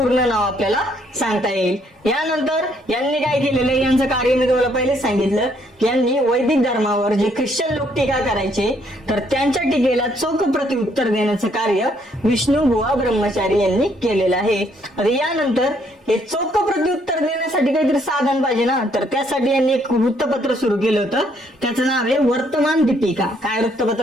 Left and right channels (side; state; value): both; normal; correlation 0.68